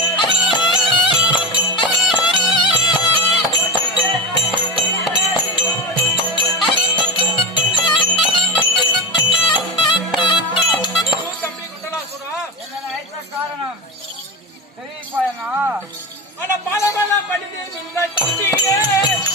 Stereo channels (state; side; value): normal; both; correlation 0.19